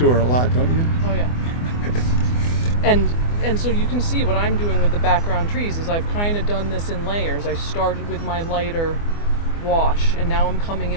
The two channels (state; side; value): late; right; 24 ms